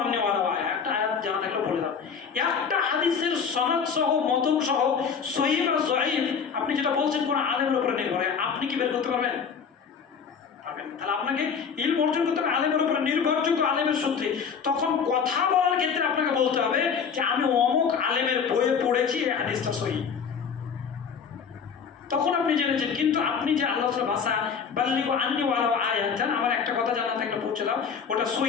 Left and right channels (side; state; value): right; quieter; 6.5 dB